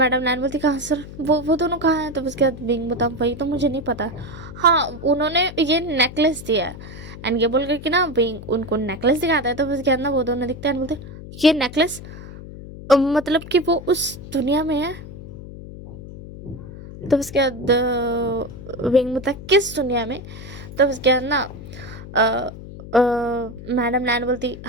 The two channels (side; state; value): left; noise; hum, 13 dB below the sound